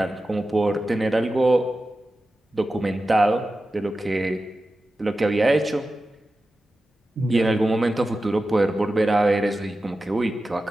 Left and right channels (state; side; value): normal; both; correlation 0.93